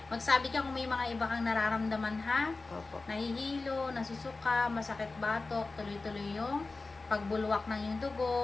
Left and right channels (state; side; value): quieter; right; 3.6 dB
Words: Magsabi ka kung may mga iba kang nararamdaman, ha? Opo. Nahihilo, nasusuka, masakit batok, tuloy-tuloy yung pagbulwak ng yung